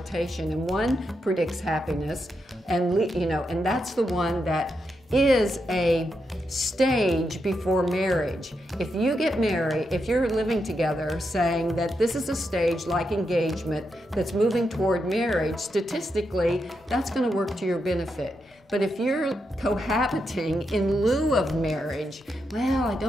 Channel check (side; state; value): both; normal; correlation 0.84